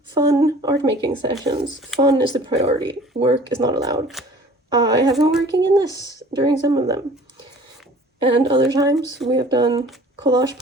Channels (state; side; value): normal; both; correlation 0.47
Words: fun art making sessions. Fun is the priority. Work is not allowed. I have been working in this during some of them. And other times we have done collage